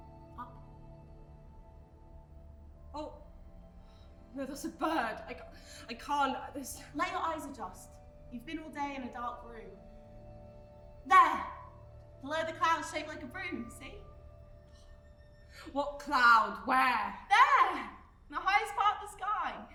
Up. Oh. No, that's a bird. I can't. This. Let your eyes adjust. You've been all day in a dark room. There! Below the clouds shaped like a broom, see? What cloud? Where? There! In the highest part of the sky.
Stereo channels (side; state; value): both; identical; correlation 1.00